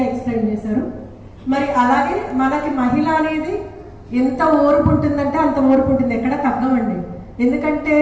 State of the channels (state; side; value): identical; both; correlation 1.00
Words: ఎక్స్ప్లెయిన్ చేశారు. మరి అలాగే మనకి మహిళ అనేది ఎంత ఓర్పు ఉంటుందంటే అంత ఓర్పు ఉంటుంది, ఎక్కడ తగ్గమండి. ఎందుకంటే